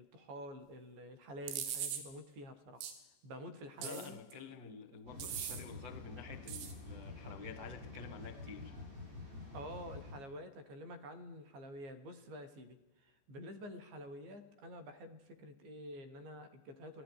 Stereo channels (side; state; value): left; late; 15 ms